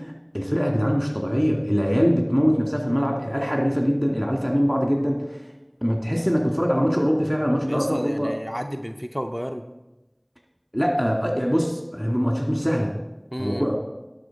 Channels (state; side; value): identical; both; correlation 1.00